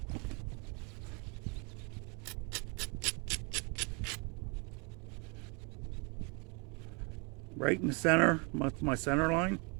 Right in the center, my center line.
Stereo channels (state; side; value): quieter; left; 32.8 dB